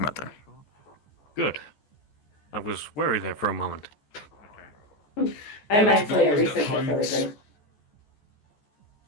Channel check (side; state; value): right; late; 14 ms